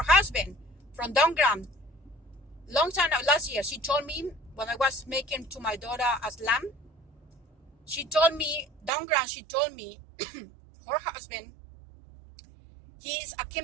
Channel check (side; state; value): left; drops out; at 8.9 s